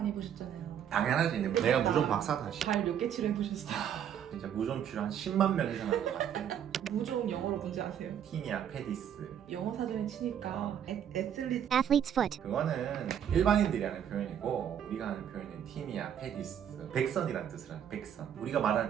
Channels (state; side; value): quieter; left; 9.2 dB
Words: 해보셨잖아요. 당연하지. 내가 무좀 박사다. 발 몇 개 치료해보셨어요? 진짜 무좀 치료 한 10만 명 이상 한 것 같아. 무좀 영어로 뭔지 아세요? 티니아 페디스. 영어 사전에 치니까 애슬리트 athlete's foot, 그거는 일반인들이 하는 표현이고 우리가 하는 표현은 티니아 페디스. 백선이라는 뜻을 하는 백선. 우리가 말하는